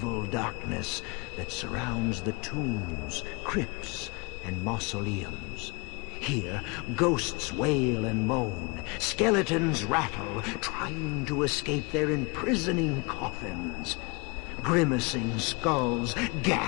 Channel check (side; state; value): right; quieter; 28.2 dB